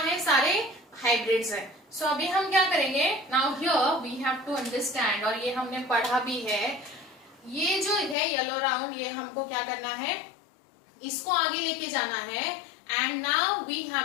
सारे हाइब्रिड्स हैं। सो अभी हम क्या करेंगे, now here we have to understand, और ये हमने पढ़ा भी है, ये जो है येलो राउंड, ये हमको क्या करना है, इसको आगे लेके जाना है, and now we have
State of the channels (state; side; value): drops out; right; at 8.2 s